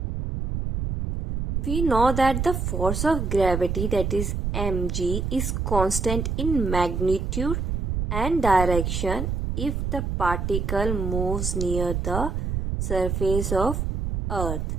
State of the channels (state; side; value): noise; right; rumble, 2 dB below the sound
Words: We know that the force of gravity, that is mg, is constant in magnitude and direction if the particle moves near the surface of earth.